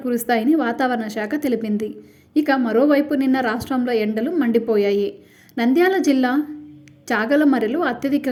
కురుస్తాయని వాతావరణ శాఖ తెలిపింది. ఇక మరోవైపు నిన్న రాష్ట్రంలో ఎండలు మండిపోయాయి. నంద్యాల జిల్లా చాగలమరిలో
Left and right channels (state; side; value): identical; both; correlation 1.00